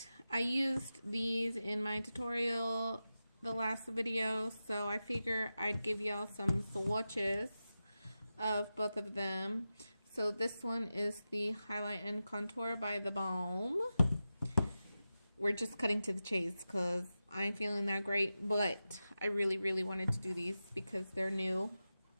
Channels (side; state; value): both; inverted; correlation -0.93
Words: I used these in my tutorial the last video, so I figure I'd give y'all some swatches of both of them. So this one is the Highlight and Contour by TheBalm. We're just cutting to the chase because I ain't feeling that great, but I really wanted to do these because they're new.